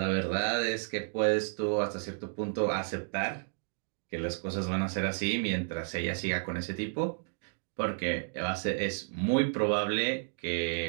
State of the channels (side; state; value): left; silent; digital silence